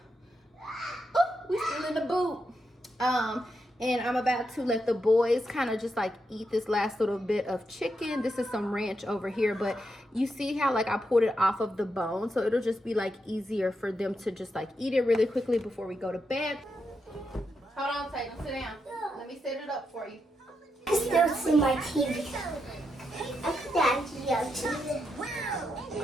oh, we still in the boot. And I'm about to let the boys kind of just like eat this last little bit of chicken. This is some ranch over here, but you see how like I pulled it off of the bone, so it'll just be like easier for them to just like eat it really quickly before we go to bed. Hold on, Tatum, sit down. Let me set it up for you. I still see my TV. I put that TV.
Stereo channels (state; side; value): normal; both; correlation 0.83